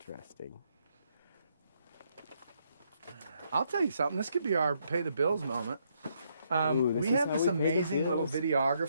I'll tell you something. This could be our pay the bills moment. Ooh, we is have how this we pay the amazing little bills?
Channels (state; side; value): inverted; both; correlation -0.74